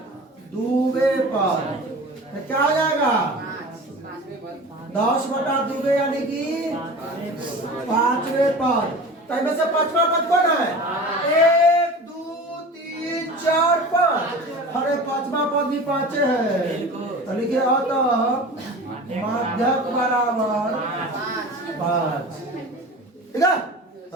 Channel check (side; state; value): both; normal; correlation 0.36